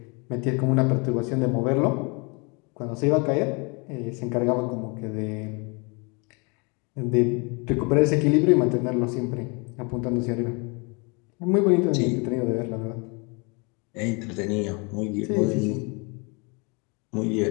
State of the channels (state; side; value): quieter; right; 31.3 dB